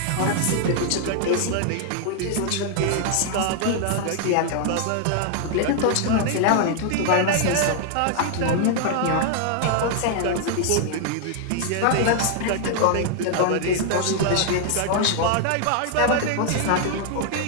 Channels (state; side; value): different; both; correlation 0.00